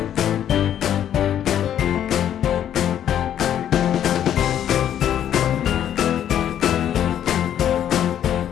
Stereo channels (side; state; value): right; quieter; 10.3 dB